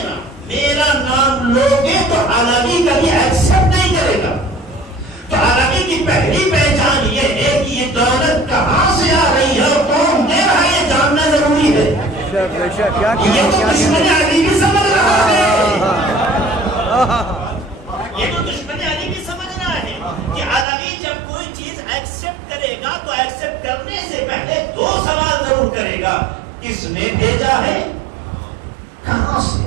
میرا نام لوگے تو علوی کبھی ایکسپٹ نہیں کرے گا. تو علوی کی پہلی پہچان یہ ہے کہ یہ دولت کہاں سے آ رہی ہے اور کون دے رہا ہے, یہ جاننا ضروری ہے. یہ تو دشمن علی بھی سمجھ رہا ہے, یہ تو دشمن علی بھی سمجھ رہا ہے کہ علوی جب کوئی چیز ایکسپٹ کرے گا تو ایکسپٹ کرنے سے پہلے دو سوال ضرور کرے گا, کس نے بھیجا ہے, کہاں سے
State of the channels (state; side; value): drops out; left; at 20.7 s